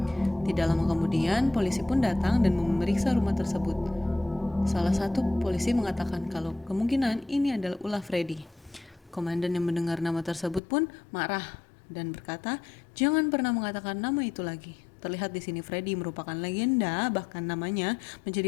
Tidak lama kemudian, polisi pun datang dan memeriksa rumah tersebut. Salah satu polisi mengatakan kalau kemungkinan ini adalah ulah Freddy. Komandan yang mendengar nama tersebut pun marah dan berkata, "Jangan pernah mengatakan nama itu lagi." Terlihat di sini Freddy merupakan legenda, bahkan namanya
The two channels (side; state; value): right; drops out; at 10.6 s